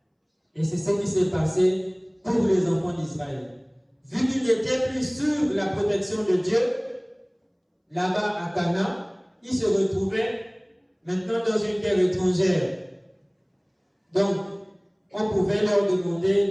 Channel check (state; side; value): identical; both; correlation 1.00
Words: Et c'est ce qui s'est passé pour les enfants d'Israël. Vu qu'ils n'étaient plus sur la protection de Dieu, là-bas à Canaan, ils se retrouvaient maintenant dans une terre étrangère. Donc, on pouvait leur demander